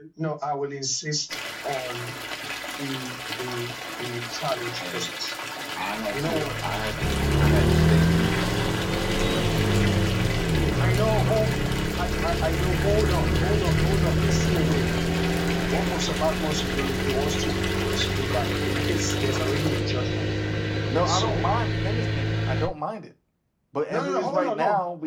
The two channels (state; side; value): identical; both; correlation 1.00